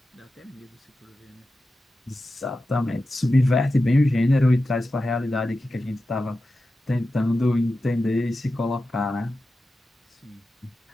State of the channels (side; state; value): both; normal; correlation 0.92